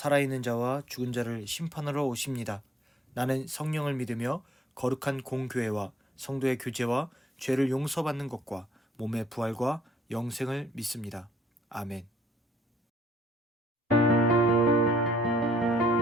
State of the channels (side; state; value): both; normal; correlation 0.65